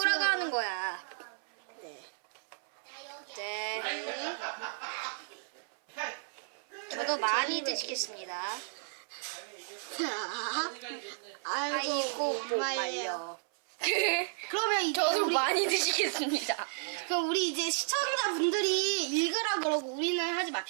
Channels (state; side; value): silent; left; 56 dB below the other